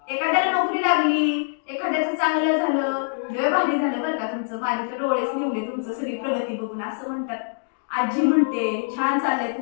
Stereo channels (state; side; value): silent; right; digital silence